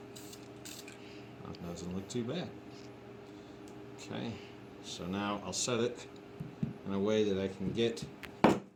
That doesn't look too bad. Okay, so now I'll set it in a way that I can get,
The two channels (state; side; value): identical; both; correlation 1.00